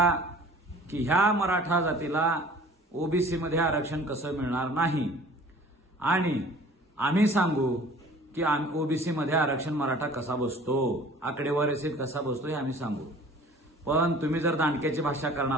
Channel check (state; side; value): normal; both; correlation 0.48